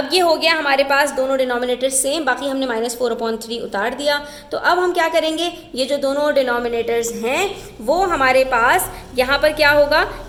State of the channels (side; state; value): both; identical; correlation 1.00